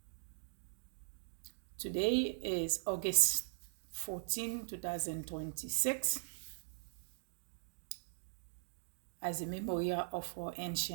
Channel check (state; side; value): silent; left; digital silence